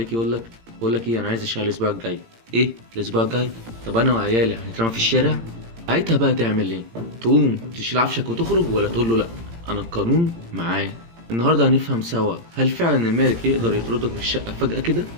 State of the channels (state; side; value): late; left; 18 ms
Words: يقول لك ايه، انا عايز الشقه الاسبوع الجاي. ايه الاسبوع الجاي؟ طب انا وعيالي هنترمى في الشارع. ساعتها بقى تعمل ايه؟ تقوم تشيل عفشك وتخرج، ولا تقول له لا انا القانون معايا؟ النهارده هنفهم سوا، هل فعلا المالك يقدر يطردك من الشقه فجأة كده،